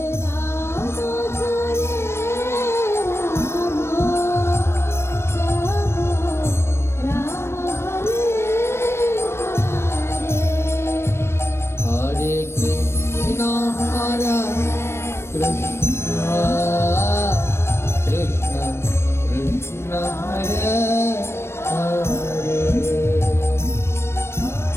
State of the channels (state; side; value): late; right; 0.12 ms